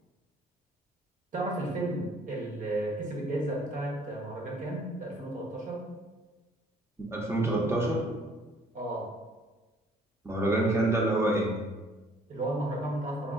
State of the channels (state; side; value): normal; both; correlation 0.60